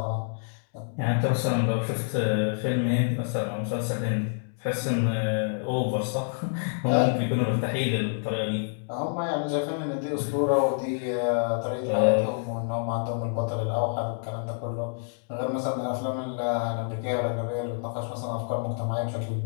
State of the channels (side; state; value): right; silent; digital silence